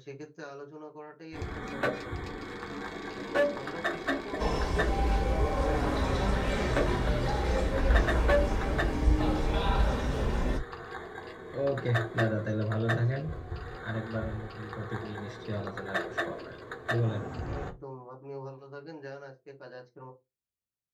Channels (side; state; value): both; identical; correlation 1.00